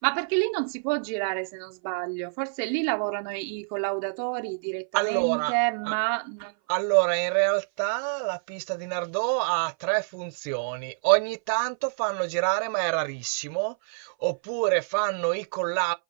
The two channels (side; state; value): left; silent; 58 dB below the other